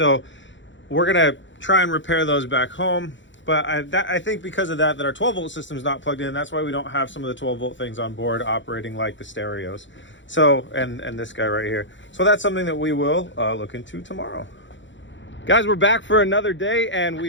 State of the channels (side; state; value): right; late; 0.54 ms